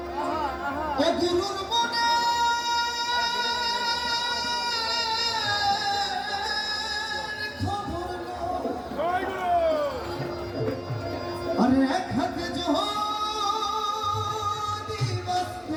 গুরুর মনে খবর আরে এক হাতে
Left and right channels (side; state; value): both; identical; correlation 1.00